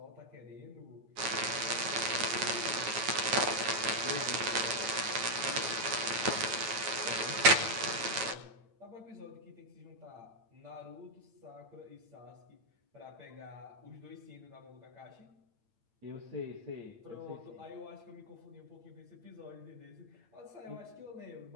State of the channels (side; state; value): left; late; 8.9 ms